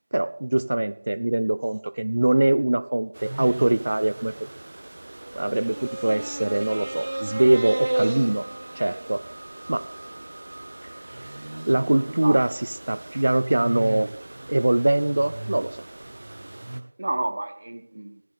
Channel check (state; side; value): inverted; both; correlation -1.00